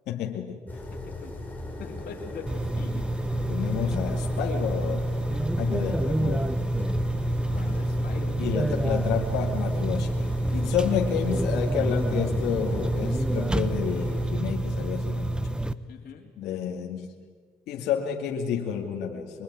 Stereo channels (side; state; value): both; normal; correlation 0.76